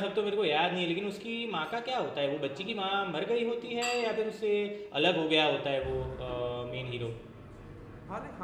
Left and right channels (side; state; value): both; identical; correlation 1.00